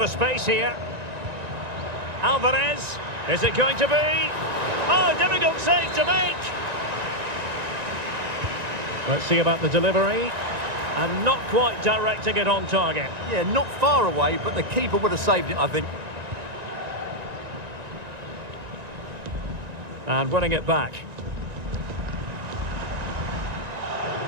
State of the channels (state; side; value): late; left; 1.9 ms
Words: of space here. Alvarez, is it going to be? Oh, difficult save to make. Let's see about the delivery. And not quite directing it on target. Yeah, not far away, but the keeper would have saved it, I think. And winning it back.